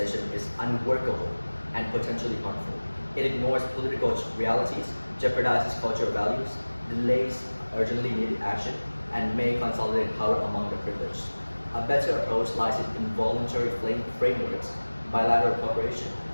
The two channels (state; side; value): inverted; both; correlation -1.00